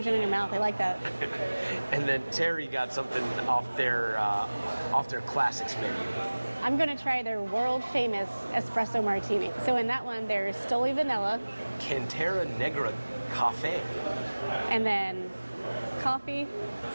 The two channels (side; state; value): both; inverted; correlation -1.00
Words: in your mouth, I like that. And then Terry got something off their classics menu. I'm gonna try their world famous espresso martini. So in that one, there's Stoli Vanilla. Cantera Negra Cafe. And then coffee,